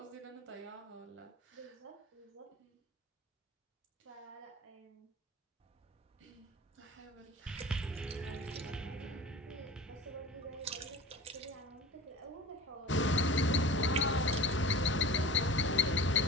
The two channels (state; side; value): normal; both; correlation 0.37